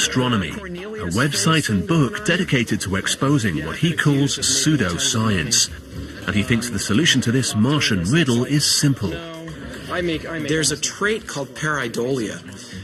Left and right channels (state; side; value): identical; both; correlation 1.00